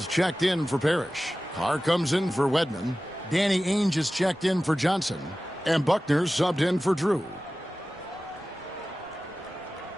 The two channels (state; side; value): noise; right; rumble, 29 dB below the sound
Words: checked in for Parrish. Carr comes in for Wedman. Danny Ainge is checked in for Johnson. And Buckner subbed in for Drew.